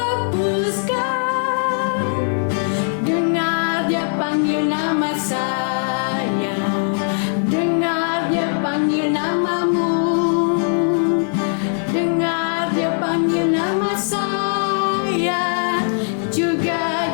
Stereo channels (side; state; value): right; silent; digital silence